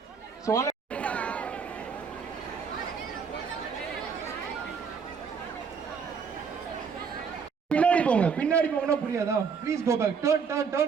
So பின்னாடி போங்கனா புரியாதா? Please go back. Turn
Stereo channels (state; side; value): quieter; left; 6.1 dB